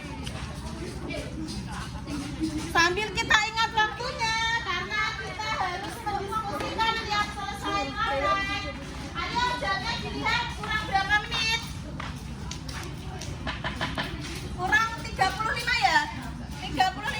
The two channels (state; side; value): identical; both; correlation 1.00